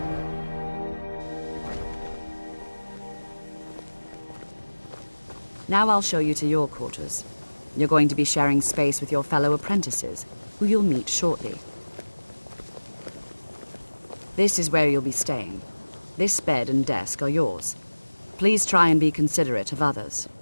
Now I'll show you to your quarters. You're going to be sharing space with your fellow apprentices, who you'll meet shortly. This is where you'll be staying. This bed and desk are yours. Please try and be considerate of others.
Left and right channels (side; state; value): both; inverted; correlation -1.00